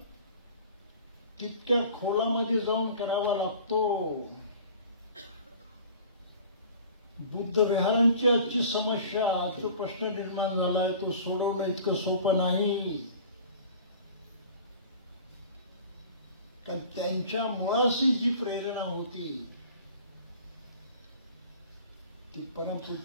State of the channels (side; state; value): both; inverted; correlation -0.44